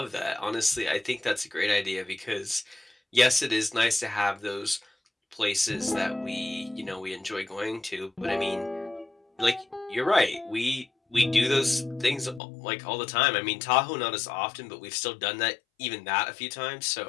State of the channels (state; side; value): drops out; right; at 12.4 s